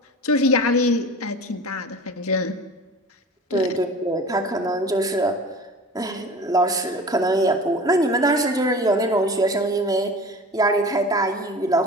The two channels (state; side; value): normal; both; correlation 0.37